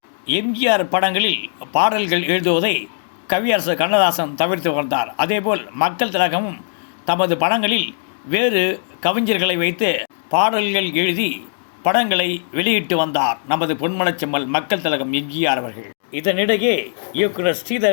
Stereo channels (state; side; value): silent; right; digital silence